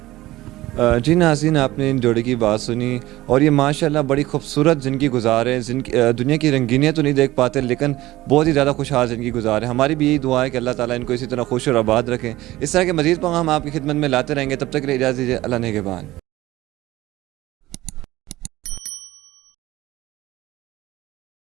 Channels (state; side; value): quieter; left; 17.1 dB